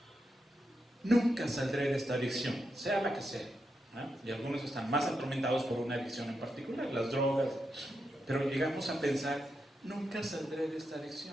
Nunca saldré de esta adicción, sea la que sea, ¿eh? Y algunos están más atormentados por una adicción en particular, las drogas, pero llegamos a pensar: nunca saldré de esta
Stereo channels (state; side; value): normal; both; correlation 0.85